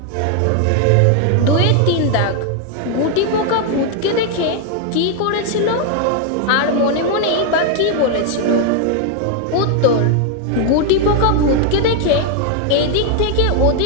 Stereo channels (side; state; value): both; different; correlation 0.01